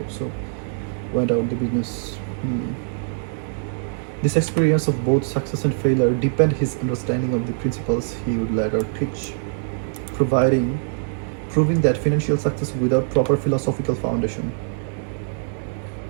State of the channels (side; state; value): left; silent; digital silence